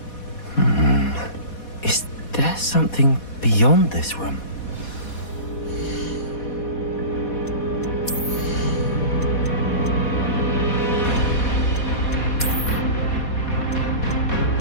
Is there something beyond this room?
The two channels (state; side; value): late; right; 4.2 ms